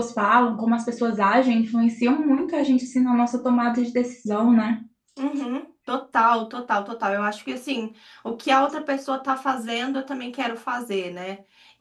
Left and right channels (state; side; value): identical; both; correlation 1.00